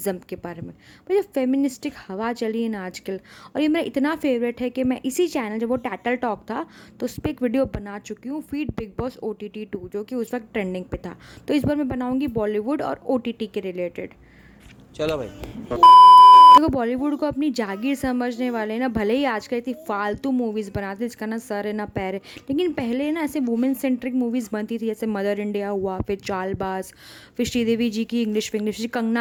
के बारे में। भाई जो फेमिनिस्टिक हवा चली है ना आजकल, और ये मेरा इतना फेवरेट है कि मैं इसी चैनल, जब वो टैटल टॉक था तो उस पर एक वीडियो बना चुकी हूँ, फीड बिग बॉस OTT 2, जो कि उस वक्त ट्रेंडिंग पे था। तो इस बार मैं बनाऊंगी बॉलीवुड और OTT के रिलेटेड। चलो भाई। देखो, बॉलीवुड को अपनी जागीर समझने वाले ना भले ही आजकल इतनी फालतू मूवीज़ बनाते हैं जिसका ना सर है ना पैर है, लेकिन पहले ना ऐसे वुमेन सेंट्रिक मूवीज़ बनती थी, जैसे मदर इंडिया हुआ, फिर चालबाज, फिर श्रीदेवी जी की इंग्लिश विंग्लिश,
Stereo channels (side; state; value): both; identical; correlation 1.00